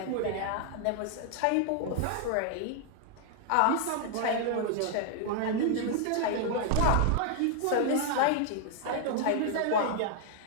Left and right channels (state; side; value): different; both; correlation 0.00